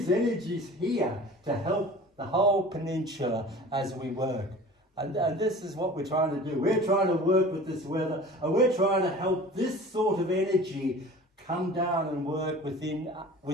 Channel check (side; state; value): both; normal; correlation 0.41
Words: energies here to help the whole peninsula as we work. And this is what we're trying to do. We're trying to work with this weather, and we're trying to help this sort of energy come down and work within